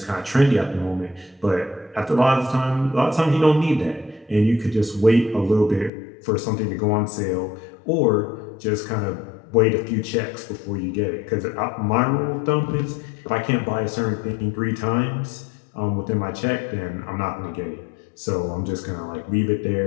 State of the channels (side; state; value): right; drops out; at 5.9 s